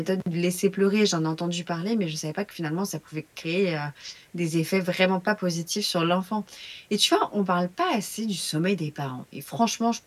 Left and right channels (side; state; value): both; identical; correlation 1.00